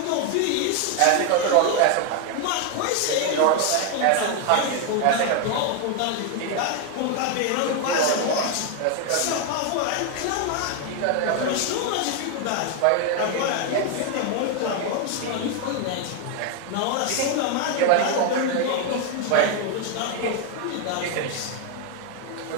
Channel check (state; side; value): different; both; correlation 0.01